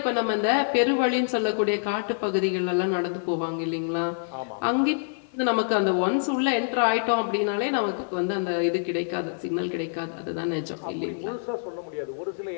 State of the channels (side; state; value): right; silent; 58 dB below the other